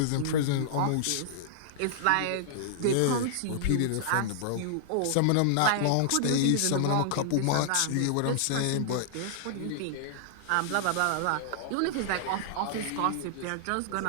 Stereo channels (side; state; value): both; different; correlation -0.01